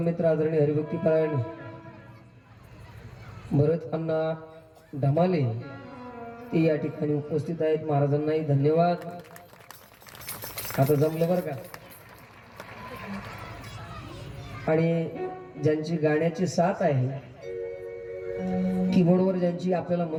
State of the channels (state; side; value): identical; both; correlation 1.00